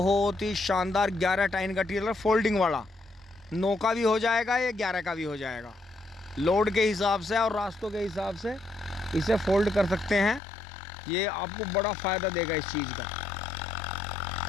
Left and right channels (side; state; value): right; drops out; at 10.4 s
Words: ही शानदार 11 टाइन का टीलर, फोल्डिंग वाला। 9 का भी हो जाएगा, ये 11 का भी हो जाएगा। लोड के हिसाब से और रास्तों के हिसाब से इसे फोल्ड कर सकते हैं। ये आपको बड़ा फ़ायदा देगा इस चीज़ का।